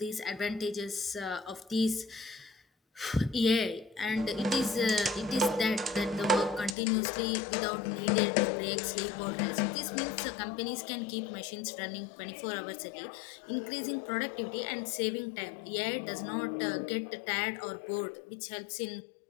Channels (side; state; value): right; drops out; at 6.8 s